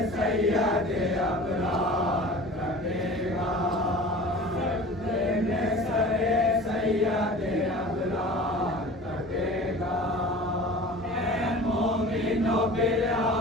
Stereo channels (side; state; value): both; normal; correlation 0.40